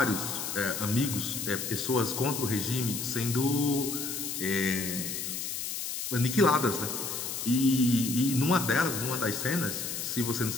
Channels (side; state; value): left; noise; hiss, 4 dB below the sound